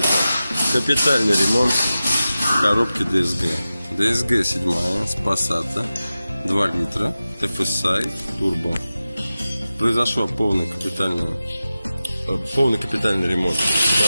капитальный ремонт коробки DSG. DSG 7 с Passat, 2 литра, TFSI, турбо. Произошел полный капитальный ремонт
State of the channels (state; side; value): inverted; both; correlation -0.94